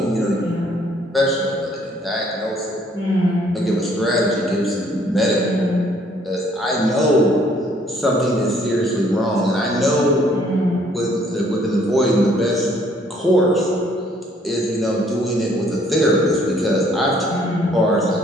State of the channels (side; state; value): both; normal; correlation 0.63